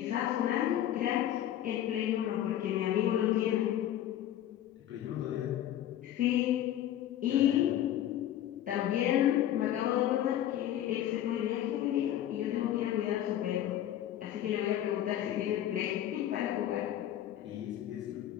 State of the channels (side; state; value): right; quieter; 11.8 dB